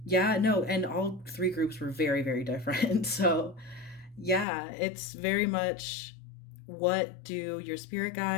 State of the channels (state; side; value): drops out; right; at 4.5 s